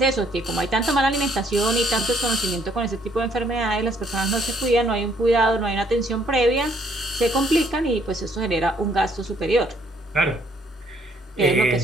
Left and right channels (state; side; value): normal; both; correlation 0.66